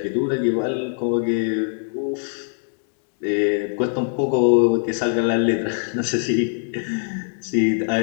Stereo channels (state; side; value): silent; right; 64 dB below the other